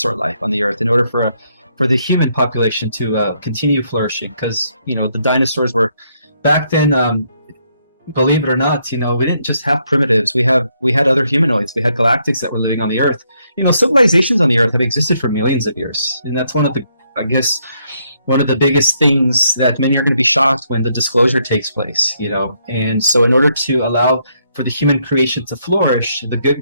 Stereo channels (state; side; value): inverted; both; correlation -0.74